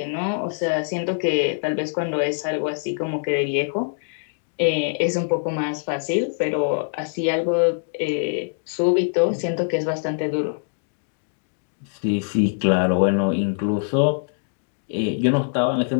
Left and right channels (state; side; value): silent; right; digital silence